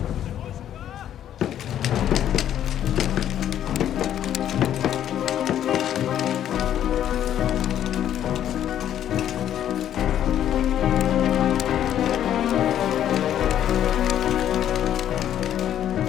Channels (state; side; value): quieter; right; 10.7 dB